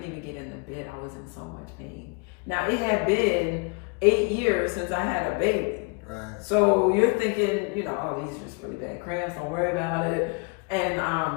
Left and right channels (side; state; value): right; quieter; 33.0 dB